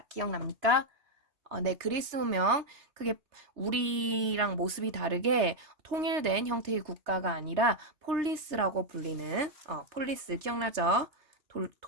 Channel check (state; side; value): late; left; 3.3 ms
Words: 기억납니까? 네, 그리스 문명 그게 우리랑 모습이 다르게 통일된 형태의 국가가 아니라 폴리스라고 불리는 폴리스 기억나죠?